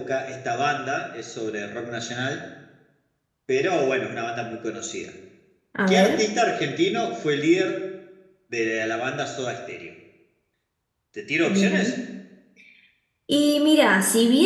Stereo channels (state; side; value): identical; both; correlation 1.00